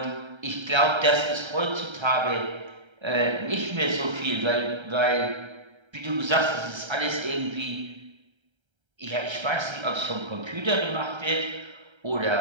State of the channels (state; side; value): late; left; 1.3 ms